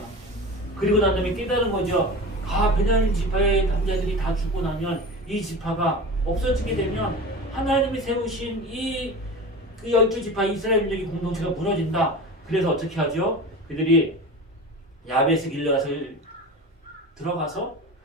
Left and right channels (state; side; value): normal; both; correlation 0.32